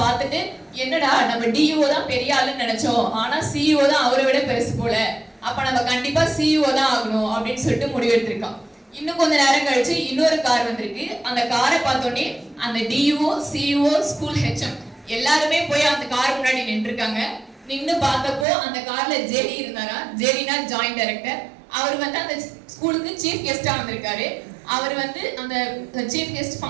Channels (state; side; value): drops out; left; at 18.4 s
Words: பார்த்துட்டு, என்னடா நம்ம டிஓ தான் பெரிய ஆளுன்னு நினைச்சோம், ஆனா சிஇஓ தான் அவரை விட பெருசு போல, அப்ப நம்ம கண்டிப்பா சிஇஓ தான் ஆகணும் அப்படின்னு சொல்லிட்டு முடிவெடுத்திருக்கான். இன்னும் கொஞ்ச நேரம் கழிச்சு இன்னொரு கார் வந்திருக்கு. அந்த காரை பார்த்தோன்னே அந்த டிஓ, சிஇஓ, ஸ்கூல் ஹெச்எம் எல்லாருமே போய் அந்த கார் முன்னாடி நின்றுருக்காங்க. நின்று பார்த்தப்போ அந்த கார்ல ஜேடி இருந்தாரா. ஜேடினா ஜாயிண்ட் டைரக்டர். அவர் அந்த ஸ்கூலுக்கு சீஃப் கெஸ்டா வந்திருக்காரு. அவர் அந்த சீஃப் கெஸ்ட்